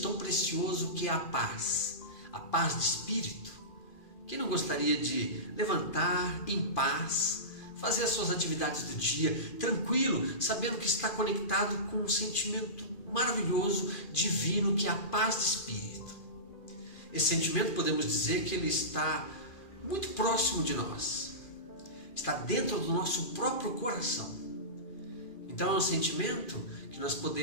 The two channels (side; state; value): right; late; 2.4 ms